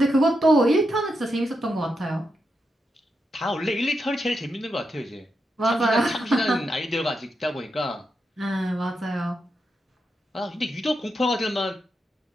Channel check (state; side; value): normal; both; correlation 0.85